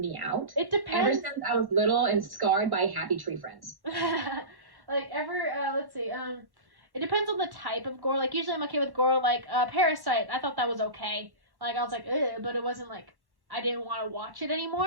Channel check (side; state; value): left; late; 1.1 ms